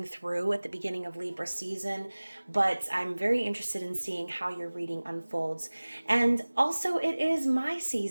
through at the beginning of Libra season, but I'm very interested in seeing how your reading unfolds. And also, it is my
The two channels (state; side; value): inverted; both; correlation -1.00